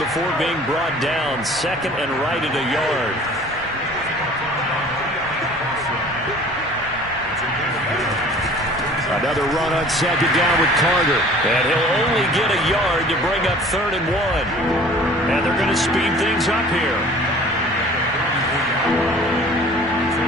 being brought down. Second and right at a yard. Another run on second down with Carter. And he'll only get a yard to bring up 3rd and 1. And they're going to speed things up here.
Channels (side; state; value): both; normal; correlation 0.48